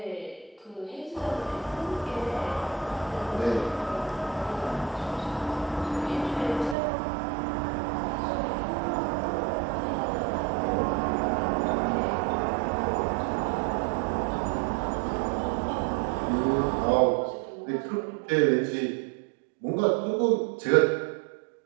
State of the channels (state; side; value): drops out; left; at 6.8 s